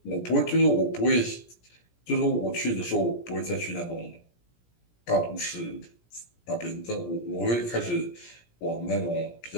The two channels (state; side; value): late; right; 17 ms